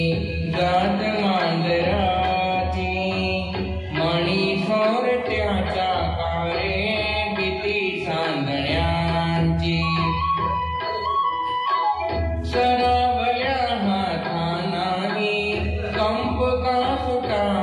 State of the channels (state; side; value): identical; both; correlation 1.00